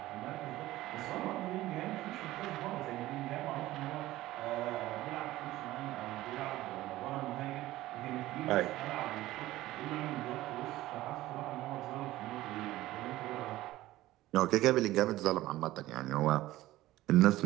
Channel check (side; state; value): left; quieter; 16.3 dB